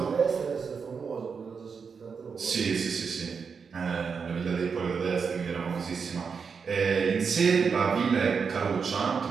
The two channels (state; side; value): quieter; left; 5.8 dB